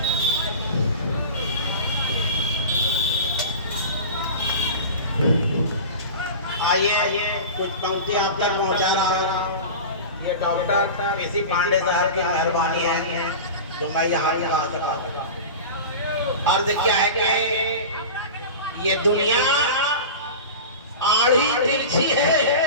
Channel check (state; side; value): inverted; both; correlation -0.31